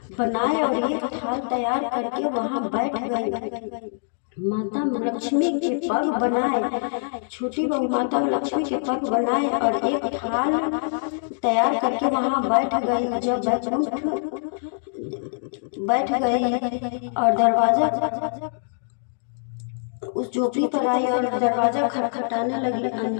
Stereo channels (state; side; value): silent; right; digital silence